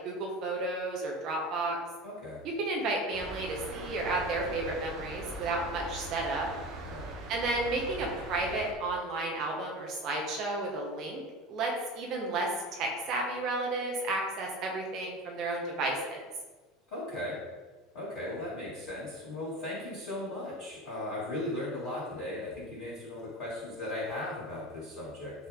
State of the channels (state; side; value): normal; both; correlation 0.31